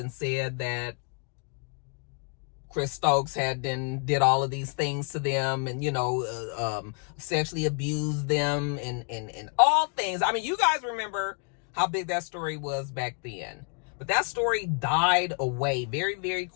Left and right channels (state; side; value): quieter; right; 38.3 dB